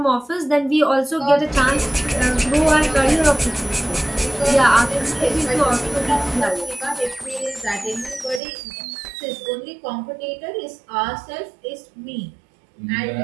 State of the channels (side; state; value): left; drops out; at 8.4 s